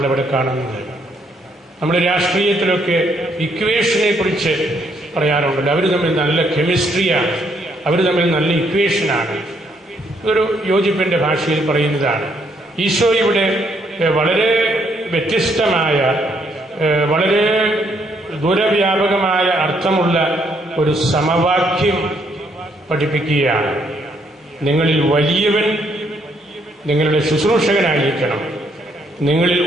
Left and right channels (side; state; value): both; normal; correlation 0.71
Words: കാണുന്നത്. നമ്മൾ രാഷ്ട്രീയത്തിലൊക്കെ ഇക്വേഷനെ കുറിച്ച് പറയാറുണ്ടല്ലോ. അവർ തമ്മിൽ നല്ല കെമിസ്ട്രിയാണ്, അവർ തമ്മിൽ നല്ല ഇക്വേഷനാണ്. ഇതൊരു യോജിപ്പിന്റെ ഭാഷയിൽ പറയുന്നതാണ്. ഈശോ ഇവിടെ വളരെ വ്യത്യസ്തമായ, വളരെ ദൂരവ്യാപകമായ അർത്ഥമുള്ള ഒരു സമവാക്യം പഠിപ്പിക്കുകയാണ്. നിങ്ങളിൽ വലിയവൻ നിങ്ങളുടെ ശുശ്രൂഷകനായിരിക്കണം, നിങ്ങളിൽ